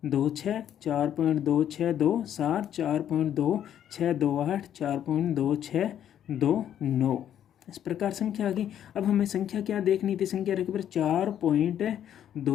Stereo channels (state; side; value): quieter; right; 10.2 dB